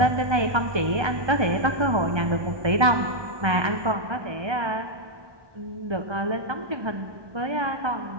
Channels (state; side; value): late; left; 1.3 ms